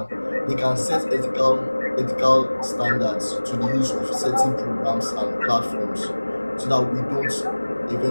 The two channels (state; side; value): inverted; both; correlation -1.00